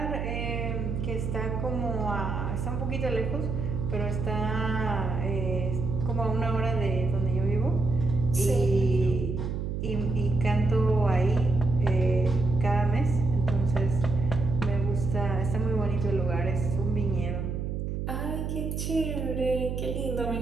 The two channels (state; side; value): noise; right; hum, 3 dB below the sound